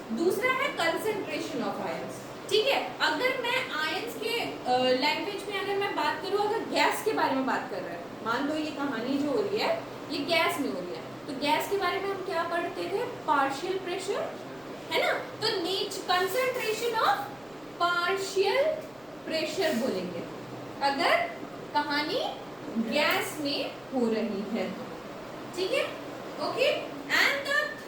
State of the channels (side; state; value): left; noise; rumble, 29 dB below the sound